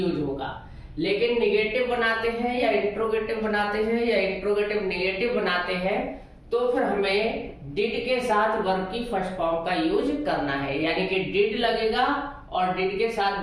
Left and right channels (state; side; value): identical; both; correlation 1.00